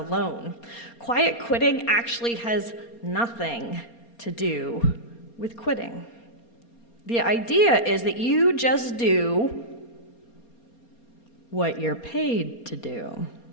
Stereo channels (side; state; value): right; late; 4.3 ms